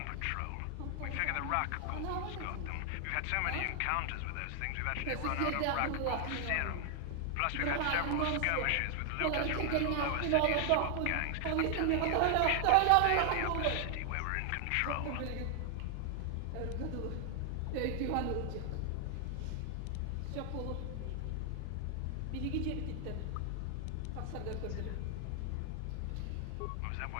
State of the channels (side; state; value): both; different; correlation 0.00